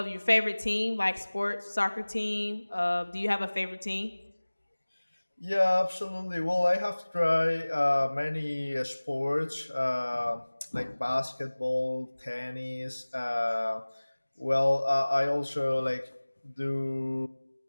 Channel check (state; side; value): inverted; both; correlation -1.00